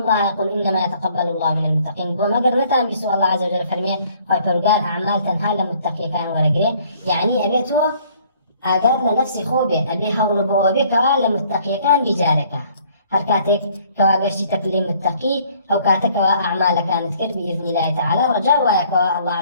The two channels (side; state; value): both; inverted; correlation -0.60